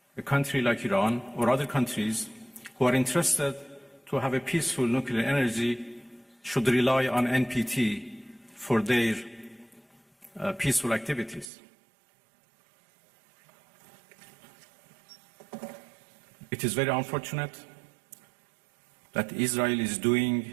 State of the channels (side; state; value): left; drops out; at 11.5 s